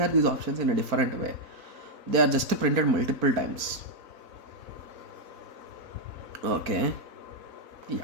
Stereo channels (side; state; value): left; late; 4.0 ms